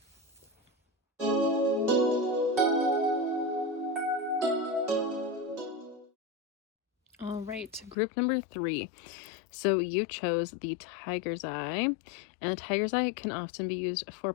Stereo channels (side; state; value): right; drops out; at 8.0 s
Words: All right, group number 3. So you chose the tiger's eye, and the tiger's eye can often be used for